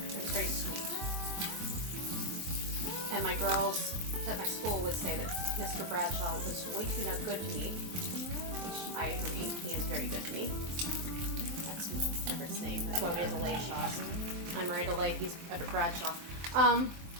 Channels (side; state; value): left; late; 23 ms